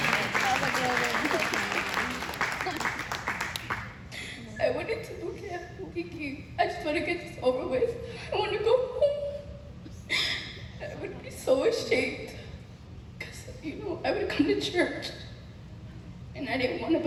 I went into boot camp thinking, I just want to get this over with. I want to go home. I would be so ashamed because, I would come to church and I didn't want to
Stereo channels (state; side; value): identical; both; correlation 1.00